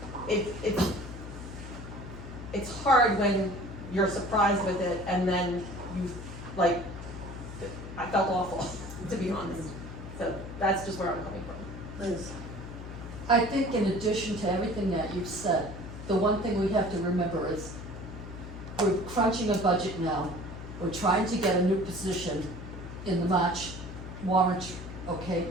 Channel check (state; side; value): noise; left; hum, 11 dB below the sound